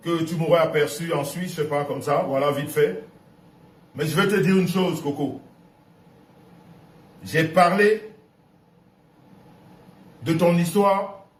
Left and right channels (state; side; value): identical; both; correlation 1.00